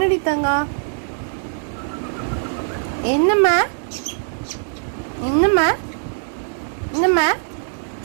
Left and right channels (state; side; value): silent; left; digital silence